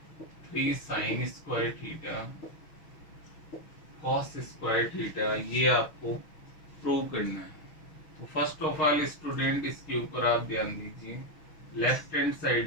3 sine square theta cos square theta, ये आपको प्रूव करना है। तो फर्स्ट ऑफ ऑल स्टूडेंट इसके ऊपर आप ध्यान दीजिए, लेफ्ट हैंड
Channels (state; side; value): late; right; 6.4 ms